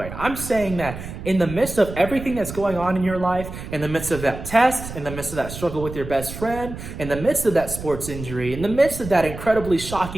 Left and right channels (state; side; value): noise; right; rumble, 10 dB below the sound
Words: I'm saying that in the midst of everything that's going on in your life, in the midst of that test, in the midst of that struggle with your best friend, in the midst of that sports injury, in the midst of that incredibly